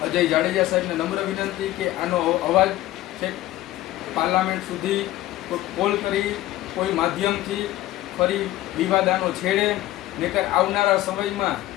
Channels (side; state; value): right; quieter; 15.5 dB